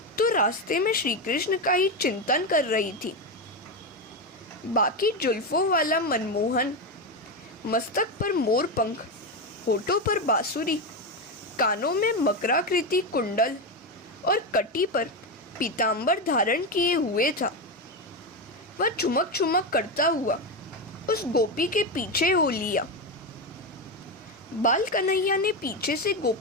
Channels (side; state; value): both; normal; correlation 0.12